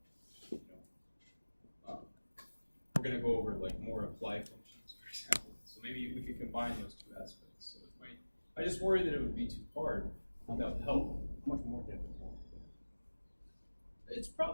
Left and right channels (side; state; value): both; inverted; correlation -1.00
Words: We're going to go over more apply functions, for example. So maybe we could combine those 2 aspects. So it might. I just worry that it would be too hard without help. Much more difficult. It's